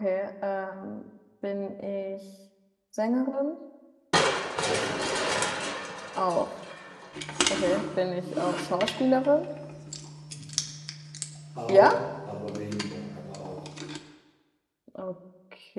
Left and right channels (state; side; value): identical; both; correlation 1.00